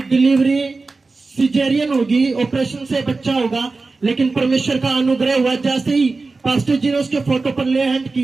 डिलीवरी सिजेरियन होगी, ऑपरेशन से बच्चा होगा। लेकिन परमेश्वर का अनुग्रह हुआ, जैसे ही पास्टर जी ने उसके फोटो पर ले हैंड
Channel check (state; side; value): quieter; left; 3.8 dB